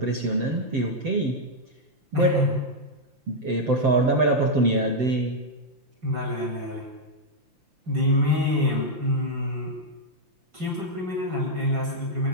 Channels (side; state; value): left; late; 5.8 ms